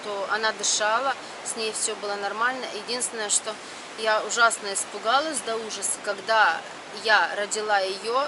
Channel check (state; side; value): identical; both; correlation 1.00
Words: она дышала, с ней все было нормально. Единственное, что я ужасно испугалась до ужаса, когда я родила ее,